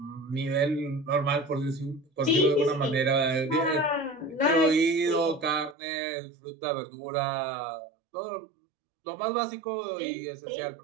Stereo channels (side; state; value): left; drops out; at 5.8 s